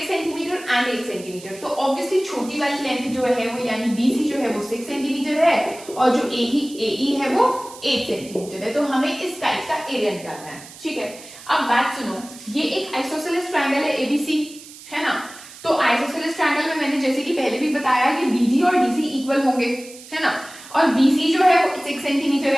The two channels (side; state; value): right; noise; hiss, 18 dB below the sound